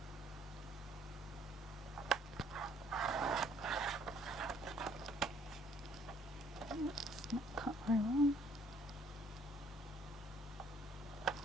It's not cut very well.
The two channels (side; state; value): both; normal; correlation 0.62